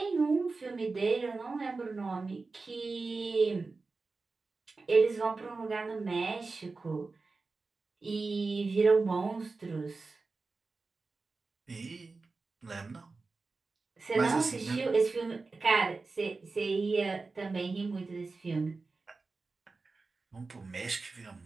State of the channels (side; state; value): left; quieter; 3.9 dB